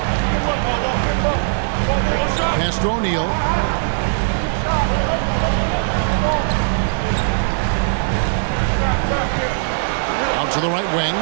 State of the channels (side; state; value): left; silent; 60 dB below the other